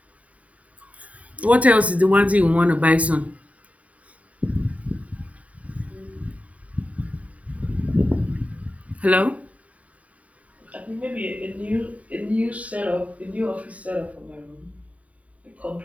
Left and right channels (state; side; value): late; left; 0.068 ms